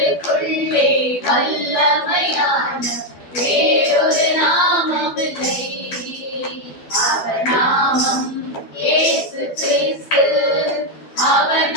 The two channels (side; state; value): right; late; 12 ms